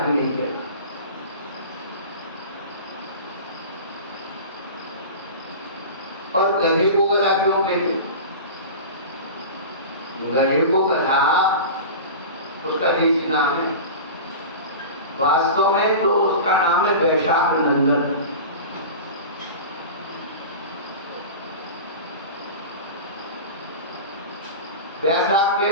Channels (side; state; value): both; inverted; correlation -0.32